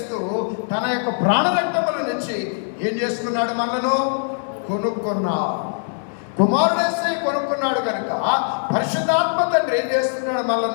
తన యొక్క ప్రాణరక్తముల నుంచి ఏం చేసుకున్నాడు? మనను కొనుక్కున్నాడు. కుమారుడేసి కొనుక్కున్నాడు కనుక పరిశుద్ధాత్మ తండ్రి ఏం చేస్తున్నాడు?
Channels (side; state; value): right; silent; 57 dB below the other